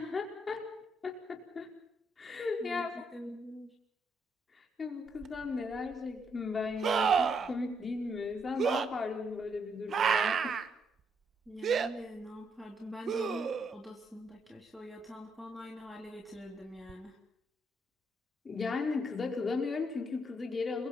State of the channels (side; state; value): both; normal; correlation 0.75